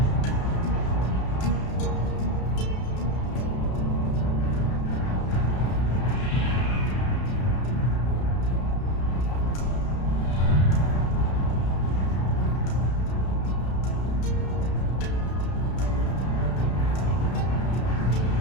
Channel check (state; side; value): late; right; 32 ms